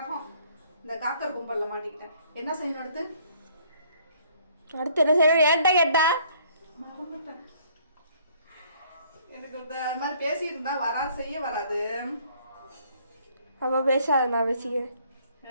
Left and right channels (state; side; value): inverted; both; correlation -0.61